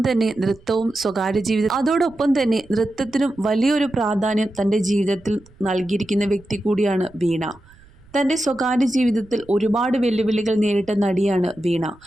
തന്നെ നൃത്തത്തിനും വലിയൊരു പ്രാധാന്യം തൻ്റെ ജീവിതത്തിൽ നൽകിയിരിക്കുന്ന വ്യക്തി കൂടിയാണ് വീണ. തൻ്റെ സ്വകാര്യ ജീവിതത്തിൽ ഒരുപാട് വെല്ലുവിളികൾ നേരിട്ട നടിയാണ് വീണ.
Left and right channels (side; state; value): right; noise; rumble, 26 dB below the sound